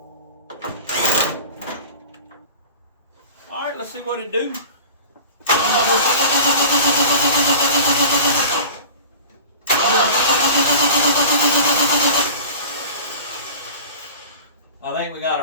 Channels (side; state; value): both; inverted; correlation -0.38